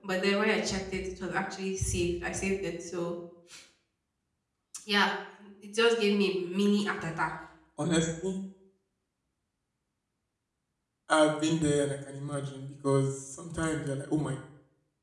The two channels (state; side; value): identical; both; correlation 1.00